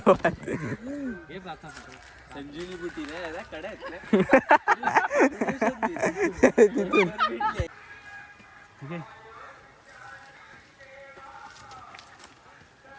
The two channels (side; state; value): both; identical; correlation 1.00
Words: संजीवनी बुटी नाही कडे ठीक आहे.